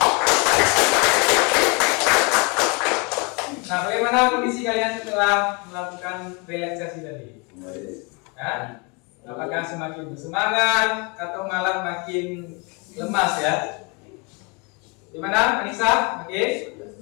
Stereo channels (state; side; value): quieter; right; 31.2 dB